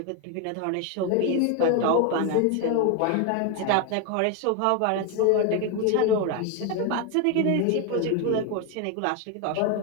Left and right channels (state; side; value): different; both; correlation 0.01